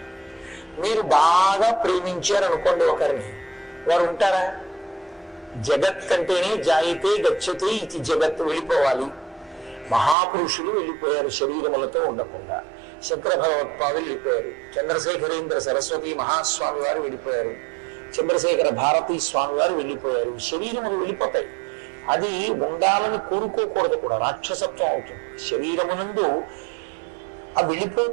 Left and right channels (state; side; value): drops out; left; at 10.2 s